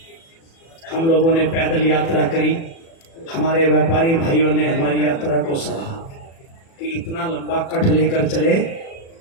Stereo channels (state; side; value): late; right; 36 ms